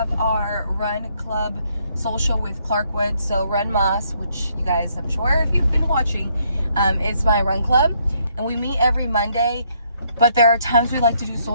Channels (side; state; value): both; inverted; correlation -0.71